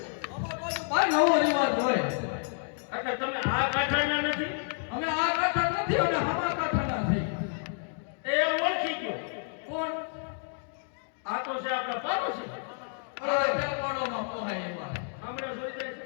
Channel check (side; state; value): right; silent; digital silence